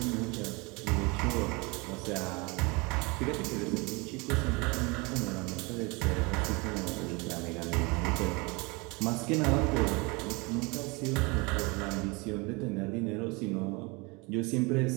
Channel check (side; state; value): left; quieter; 27.4 dB